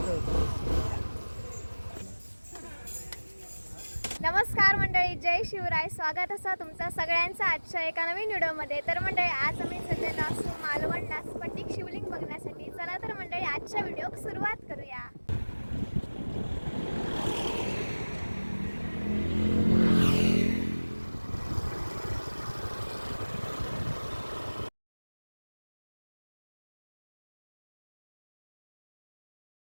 नमस्कार मंडळी, जय शिवराय. स्वागत असं तुमचं सगळ्यांचं आजच्या एका नवीन व्हिडिओमध्ये. तर मंडळी आज आम्ही सध्याला असू मालवणला स्फटिक शिवलिंग बघण्यासाठी. चला तर मंडळी आजच्या व्हिडिओ सुरुवात करूया.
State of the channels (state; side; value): inverted; both; correlation -1.00